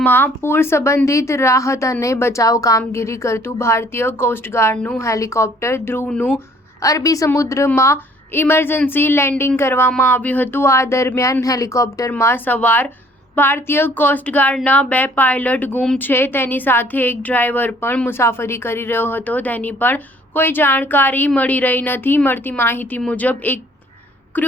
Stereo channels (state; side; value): normal; both; correlation 0.58